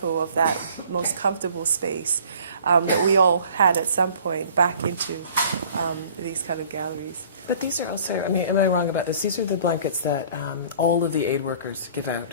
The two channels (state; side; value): inverted; both; correlation -0.52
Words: of that most comfortable space that we all had at some point back into these kind of galleries. But these are also, I mean, am I wrong about this? These are the blankets that all of the aid workers give